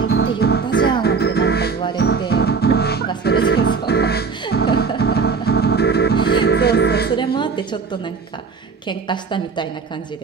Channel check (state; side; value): quieter; left; 5.1 dB